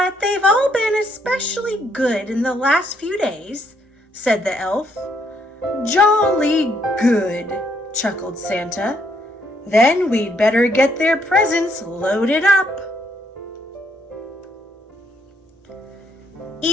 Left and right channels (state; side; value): normal; both; correlation 0.71